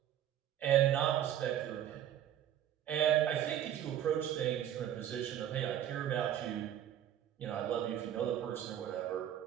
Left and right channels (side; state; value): left; quieter; 10.9 dB